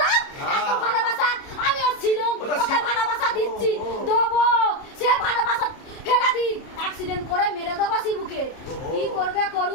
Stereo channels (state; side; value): late; right; 30 ms